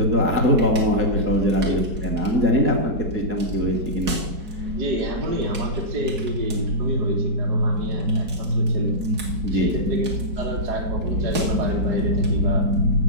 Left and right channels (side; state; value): left; late; 4.7 ms